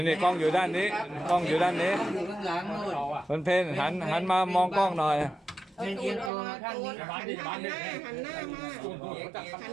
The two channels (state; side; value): drops out; left; at 6.3 s